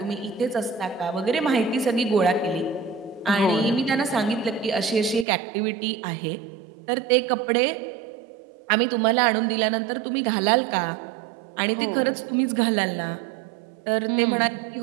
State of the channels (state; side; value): drops out; left; at 5.2 s